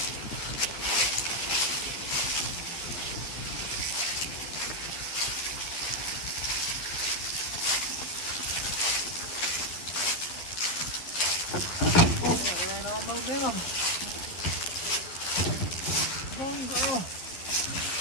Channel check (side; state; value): right; late; 11 ms